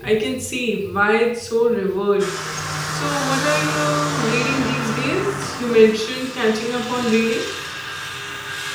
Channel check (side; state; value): both; identical; correlation 1.00